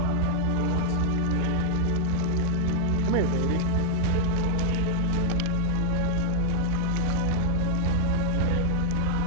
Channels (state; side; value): different; both; correlation 0.00